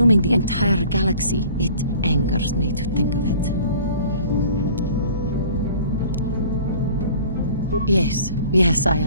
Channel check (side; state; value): both; inverted; correlation -0.48